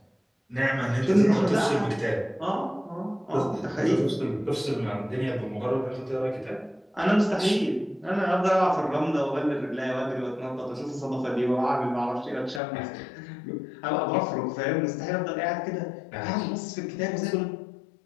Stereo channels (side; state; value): right; drops out; at 12.6 s